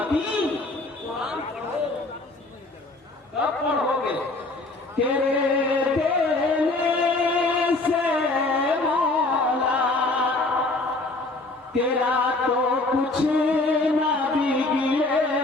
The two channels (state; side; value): quieter; right; 3.1 dB